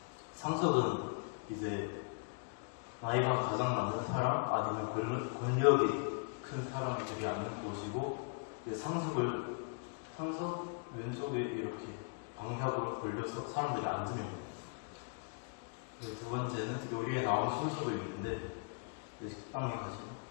상석은 이제 나이가 가장 많은 사람 아니면 권력이 큰 사람이 되게 앉는 곳이고, 이제 상석 왼쪽에 이렇게 방향으로 돌려서 사람들이 앉으면 됩니다. 두 번째는 요리에 나온 순서도 있는데, 식당에 가시면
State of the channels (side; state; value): right; quieter; 38.6 dB